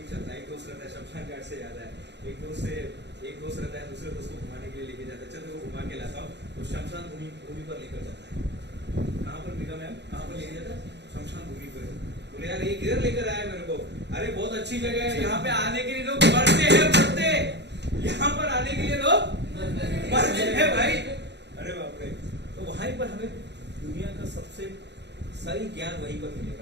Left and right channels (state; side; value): late; left; 0.50 ms